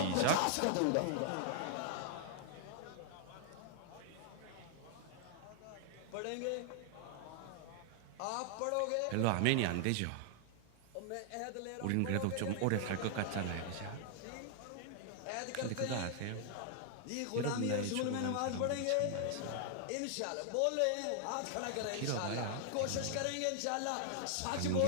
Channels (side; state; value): both; different; correlation 0.00